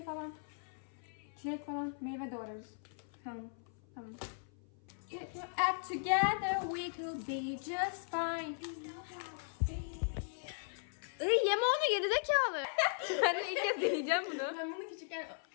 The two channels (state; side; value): silent; right; 52 dB below the other